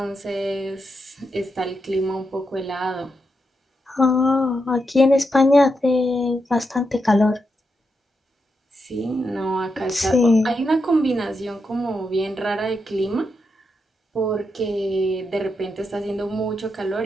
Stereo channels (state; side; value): normal; both; correlation 0.84